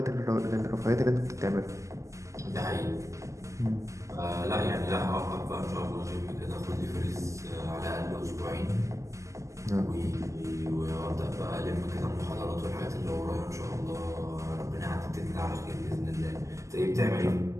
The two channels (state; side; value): late; left; 0.15 ms